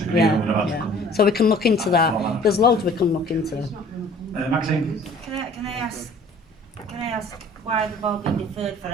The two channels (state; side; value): normal; both; correlation 0.51